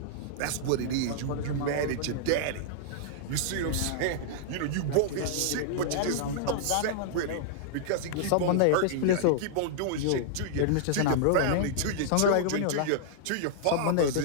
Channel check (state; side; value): different; both; correlation -0.01